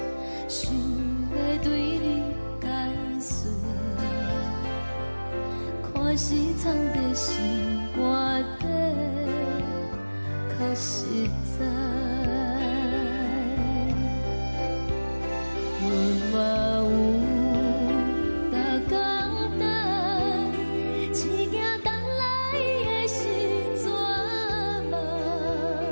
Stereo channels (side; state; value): both; inverted; correlation -1.00